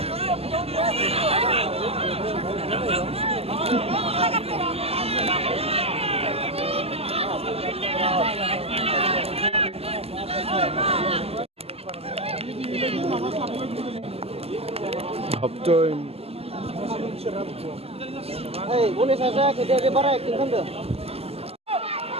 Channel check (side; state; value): left; late; 0.29 ms